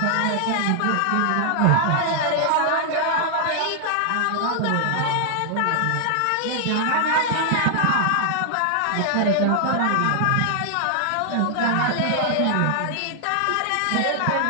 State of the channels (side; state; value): both; different; correlation 0.00